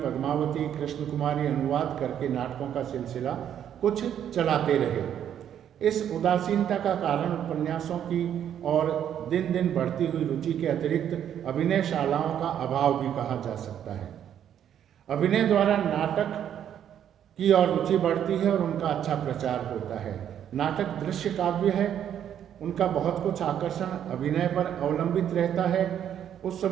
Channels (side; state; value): left; quieter; 9.7 dB